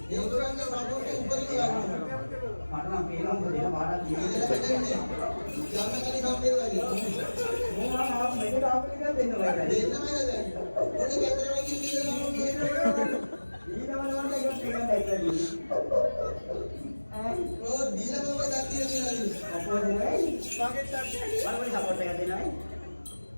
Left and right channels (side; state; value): both; inverted; correlation -1.00